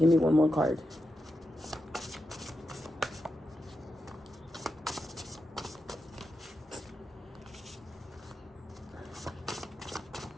me one more card.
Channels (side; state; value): both; normal; correlation 0.88